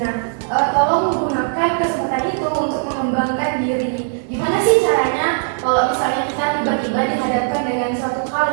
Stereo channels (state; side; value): silent; left; 58 dB below the other